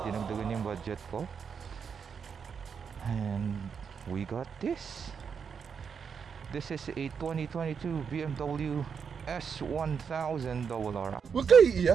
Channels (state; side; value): quieter; left; 6.5 dB